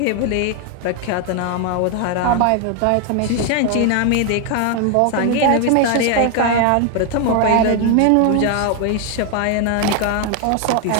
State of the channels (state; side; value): different; both; correlation 0.00